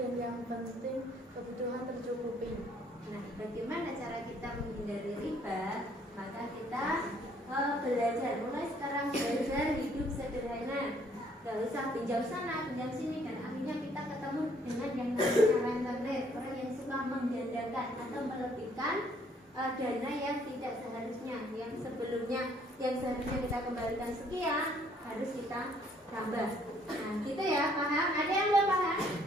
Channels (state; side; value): normal; both; correlation 0.64